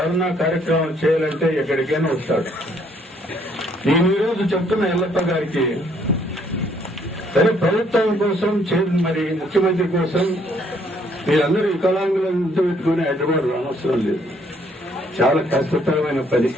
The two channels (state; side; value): normal; both; correlation 0.66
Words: కార్యక్రమం చేయాలంటే ఎక్కడికైనా వస్తాడు. నేను ఈరోజు చెప్తున్న ఎల్లప్ప గారికి, సరే ప్రభుత్వం కోసం మరి ముఖ్యమంత్రి కోసం మీరందరూ వికలాంగులంతా పెట్టుకుని హైదరాబాద్ రానవసరం లేదు. చాలా కష్టతరమైన పని.